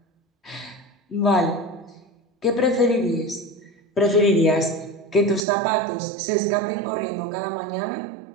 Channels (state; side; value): drops out; left; at 5.4 s